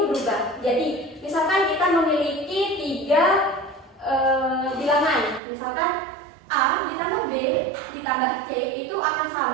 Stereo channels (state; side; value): drops out; left; at 5.4 s